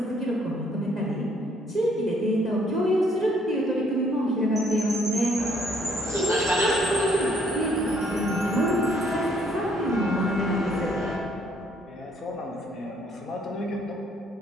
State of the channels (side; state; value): both; normal; correlation 0.65